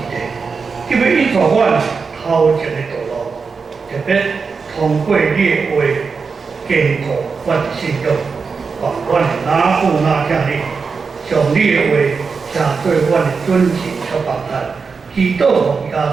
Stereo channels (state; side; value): quieter; left; 5.1 dB